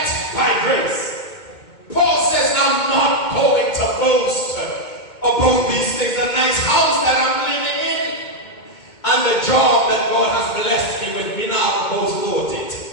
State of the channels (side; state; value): right; late; 2.2 ms